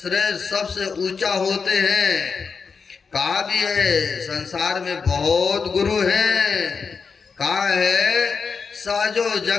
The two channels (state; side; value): quieter; right; 5.4 dB